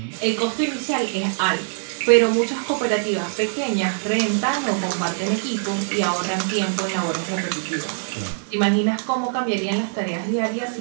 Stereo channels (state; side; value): silent; left; digital silence